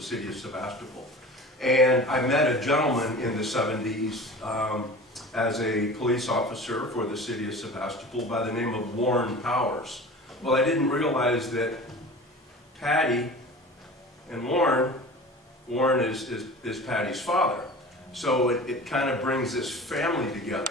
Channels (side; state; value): both; normal; correlation 0.38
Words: city of Sebastopol. And I met a gentleman in the 70s as a police officer for the city of Sebastopol by the name of Warren Powers. Well, I didn't realize that Patty and Warren is Patty's father. So it kind of brings this family together.